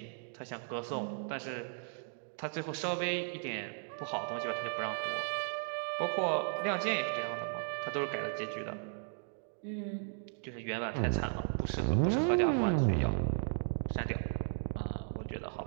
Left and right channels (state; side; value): silent; left; 54 dB below the other